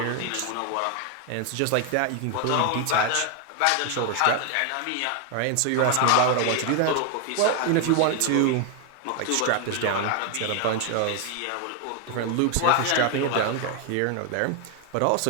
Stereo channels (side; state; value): both; different; correlation 0.01